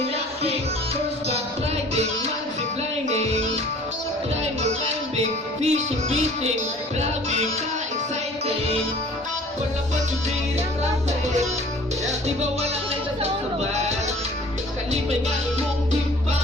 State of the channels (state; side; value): normal; both; correlation 0.49